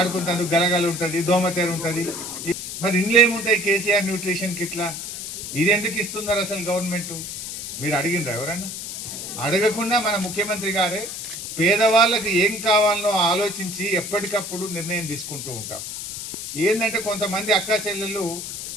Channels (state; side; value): noise; left; hiss, 7 dB below the sound